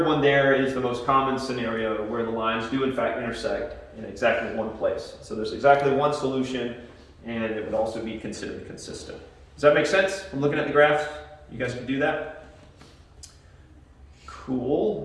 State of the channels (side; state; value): both; identical; correlation 1.00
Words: one there is the most common scenario where the lines do in fact intersect in exactly one place. So there's exactly one solution, and it would also be considered consistent. Does that make sense from looking at the graphs? You guys can do that?